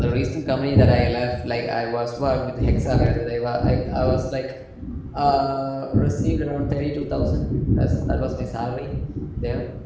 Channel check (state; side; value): identical; both; correlation 1.00